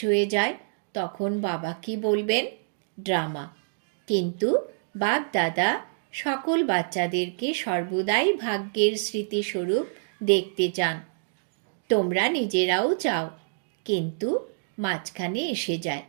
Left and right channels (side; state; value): left; silent; digital silence